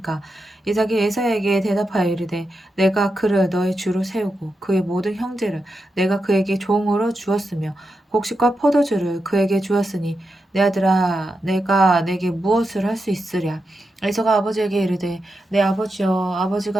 이삭이 에사에게 대답하여 이르되 내가 그를 너의 주로 세우고 그의 모든 형제를 내가 그에게 종으로 주었으며 곡식과 포도주를 그에게 주었으니 내 아들아 내가 내게 무엇을 할 수 있으랴. 에서가 아버지에게 이르되 내 아버지여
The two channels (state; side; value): normal; both; correlation 0.87